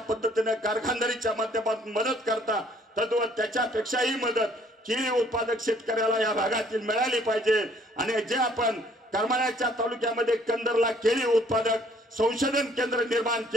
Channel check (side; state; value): both; normal; correlation 0.61